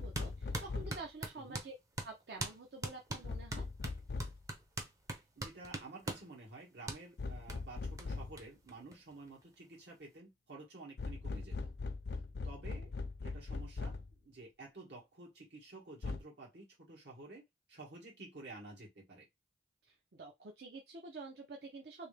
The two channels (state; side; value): normal; both; correlation 0.65